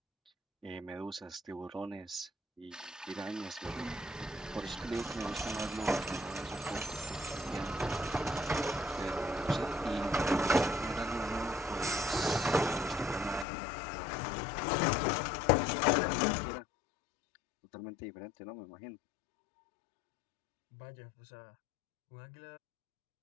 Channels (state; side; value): drops out; right; at 13.5 s